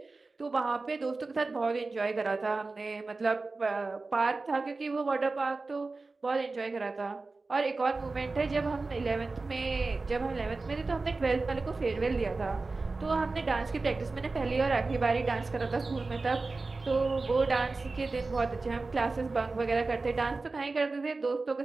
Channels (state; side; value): quieter; left; 3.7 dB